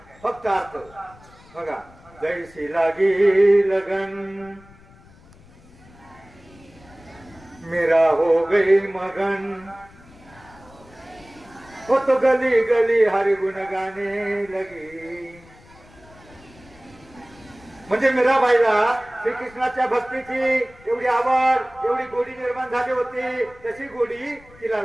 फक्त अर्थ बघा. जैसी लागी लगन मेरा हो गई मगन, हो तो गली गली हरि गुण गाणे लगी. म्हणजे मीराबाईला श्रीकृष्णाच्या भक्तीची एवढी आवड, एवढी गोडी निर्माण झाली होती. तशी गोडी तिला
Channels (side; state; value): left; noise; rumble, 24 dB below the sound